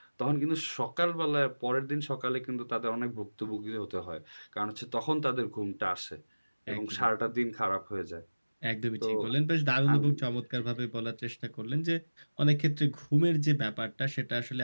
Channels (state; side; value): inverted; both; correlation -1.00